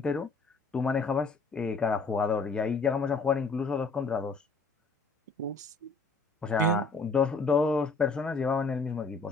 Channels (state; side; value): quieter; right; 3.9 dB